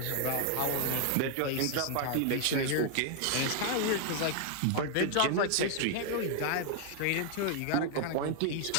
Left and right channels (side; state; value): both; different; correlation 0.00